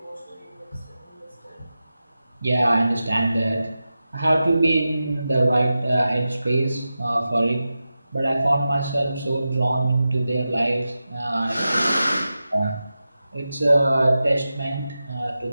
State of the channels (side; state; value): both; inverted; correlation -0.93